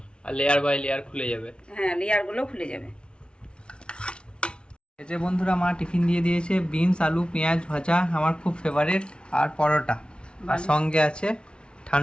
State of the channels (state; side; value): late; right; 0.057 ms